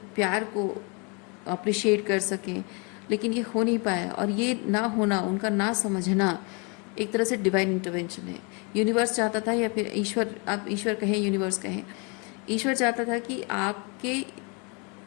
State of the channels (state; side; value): quieter; right; 32.7 dB